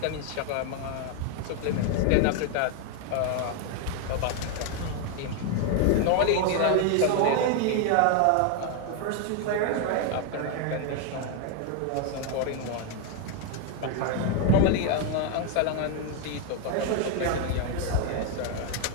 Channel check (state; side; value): different; both; correlation 0.01